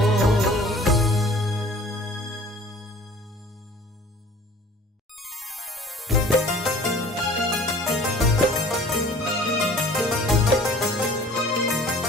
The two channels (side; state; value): both; normal; correlation 0.48